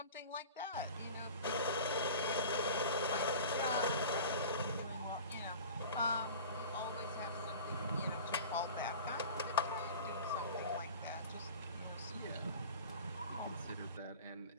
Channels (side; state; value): both; inverted; correlation -0.38